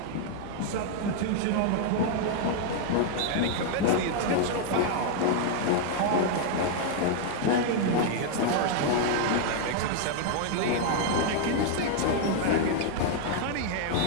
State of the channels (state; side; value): different; both; correlation 0.00